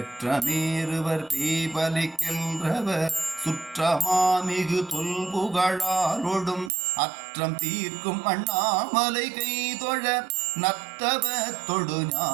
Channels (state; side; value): drops out; left; at 6.7 s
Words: பேபலிக்கின்றவர் சுற்றமாமிகு தொல்புகழாலொடும் அற்றம் தீர்க்கும் அண்ணாமலை கைதொழ நத்தவ தொடு